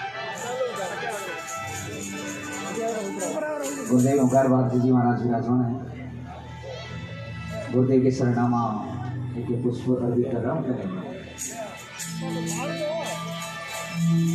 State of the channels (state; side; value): identical; both; correlation 1.00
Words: गुरुदेव ओंकार भारती जी महाराज विराजमान है। गुरुदेव के सरनामा एक पुष्प अर्पित कर रहा हूँ।